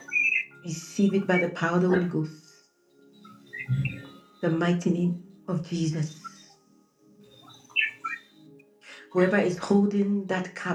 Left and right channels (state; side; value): identical; both; correlation 1.00